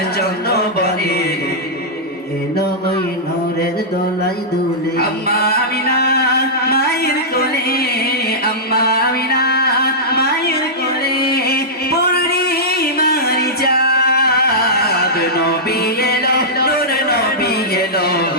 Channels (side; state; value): both; normal; correlation -0.12